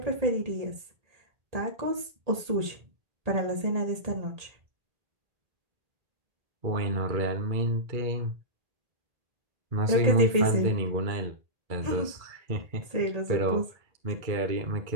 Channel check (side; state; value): left; late; 1.8 ms